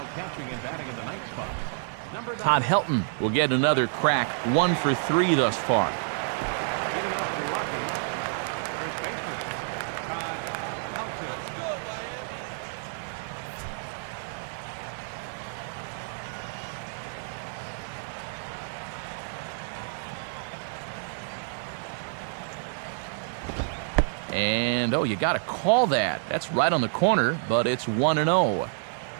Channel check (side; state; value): left; silent; digital silence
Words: catching and batting in the 9th spot, number 9. Todd Helton will get another crack, 1 for 3 thus far. Leading off the Rockies, first baseman, Todd Helton. And, oh, you got to call that. That's right on the corner, but it's 1-0.